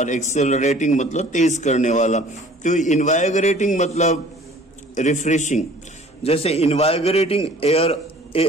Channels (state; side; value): normal; both; correlation 0.50